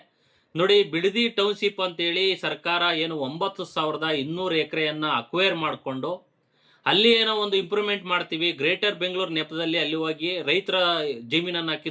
ನೋಡಿ, ಬಿಡದಿ ಟೌನ್ಶಿಪ್ ಅಂತೇಳಿ ಸರ್ಕಾರ ಏನು 9,200 ಎಕರೆಯನ್ನ ಅಕ್ವೈರ್ ಮಾಡಿಕೊಂಡು ಅಲ್ಲಿ ಏನೋ ಒಂದು ಇಂಪ್ರೂವ್ಮೆಂಟ್ ಮಾಡ್ತೀವಿ, ಗ್ರೇಟರ್ ಬೆಂಗಳೂರು ನೆಪದಲ್ಲಿ ಅಲ್ಲಿ ಹೋಗಿ ರೈತರ ಜಮೀನನ್ನ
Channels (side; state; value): both; identical; correlation 1.00